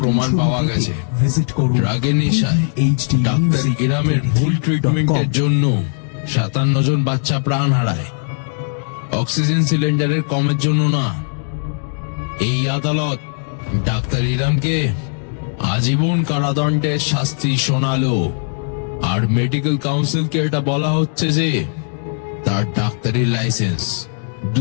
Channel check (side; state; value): right; silent; digital silence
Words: পাওয়া গেছে। ড্রাগের নেশায় ডাক্তার ইরামের ভুল ট্রিটমেন্টের জন্য 57 জন বাচ্চা প্রাণ হারায়, অক্সিজেন সিলিন্ডারের কমের জন্য না। এই আদালত ডাক্তার ইরামকে আজীবন কারাদণ্ডের শাস্তি শোনালো, আর মেডিকেল কাউন্সিলকে এটা বলা হচ্ছে যে তার ডাক্তারি লাইসেন্স